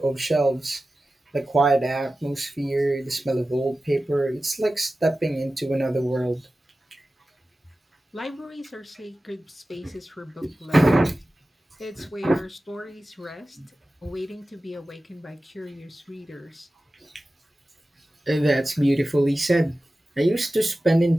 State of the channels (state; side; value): normal; both; correlation 0.95